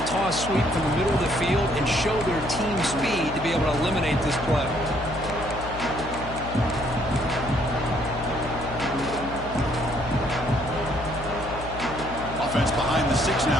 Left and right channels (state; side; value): noise; left; hum, 11 dB below the sound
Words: toss sweep from the middle of the field and show their team speed to be able to eliminate this play. Offense behind the 6